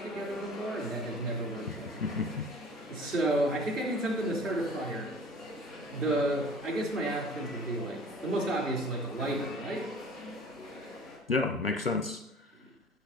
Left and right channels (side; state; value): both; normal; correlation 0.45